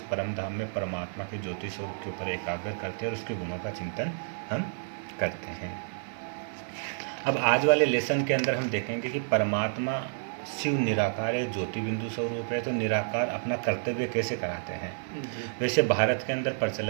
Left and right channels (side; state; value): left; silent; digital silence